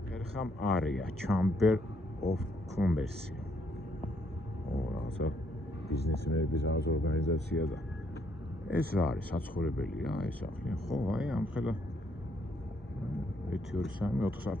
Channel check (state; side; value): normal; both; correlation 0.71